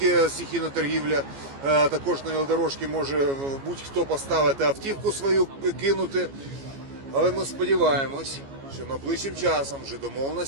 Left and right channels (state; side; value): late; left; 15 ms